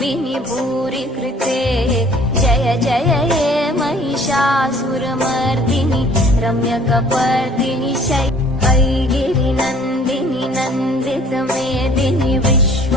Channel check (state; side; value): normal; both; correlation 0.54